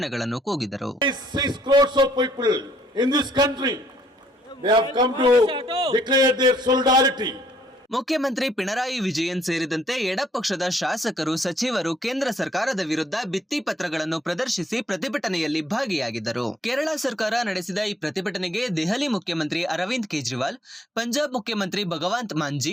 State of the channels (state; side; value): normal; both; correlation 0.66